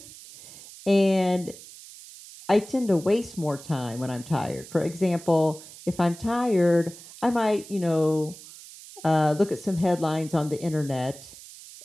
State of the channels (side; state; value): right; noise; hiss, 17 dB below the sound